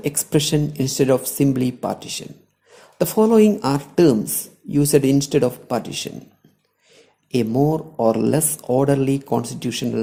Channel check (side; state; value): both; identical; correlation 1.00